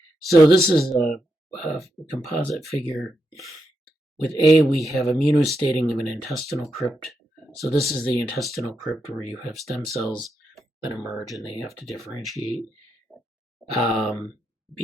So this is a composite figure. With A, we have immunostating of an intestinal crypt. So this is the intestinal crypt where you have stem cells that emerge and they have to differentiate.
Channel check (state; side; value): normal; both; correlation 0.84